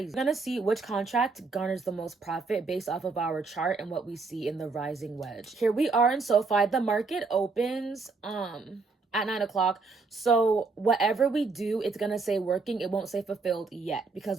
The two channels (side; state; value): left; quieter; 4.2 dB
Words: We're gonna see which contract garners the most profit based off of our chart and what we see in the rising wedge. Here we are in SoFi. The market opens at 9 o'clock. So whatever we do, it's gonna say working. It won't say fulfilled yet